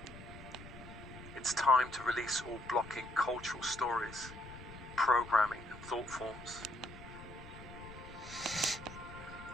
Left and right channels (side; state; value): left; noise; rumble, 15 dB below the sound